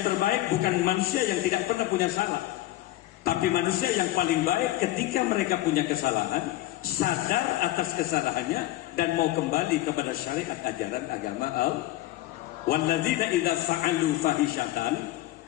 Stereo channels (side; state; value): right; quieter; 15.3 dB